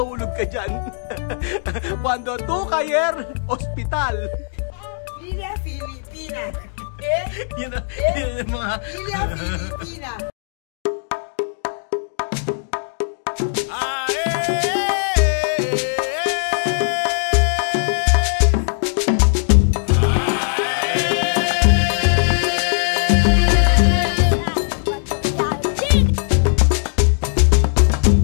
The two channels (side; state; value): right; silent; digital silence